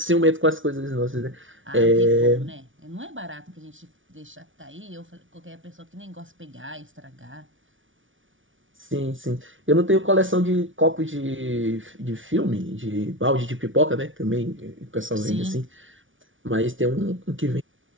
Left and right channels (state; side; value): late; left; 0.57 ms